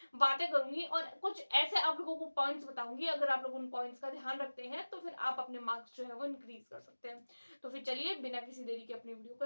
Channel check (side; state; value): both; inverted; correlation -1.00